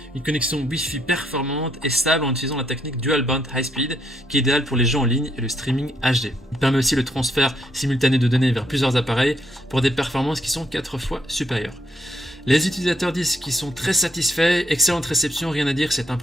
une connexion Wi-Fi performante et stable en utilisant la technique Dual Band High Speed qui est idéale pour les jeux en ligne et le streaming HD. Il permet aussi le transfert simultané de données vers plusieurs appareils pour des performances qui sont 4 fois supérieures. Les utilisateurs disent qu'ils sont très satisfaits, excellente réception, rien à dire, c'est un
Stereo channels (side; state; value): both; normal; correlation 0.73